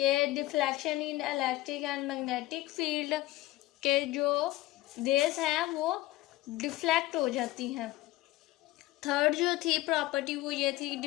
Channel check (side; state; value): right; quieter; 17.1 dB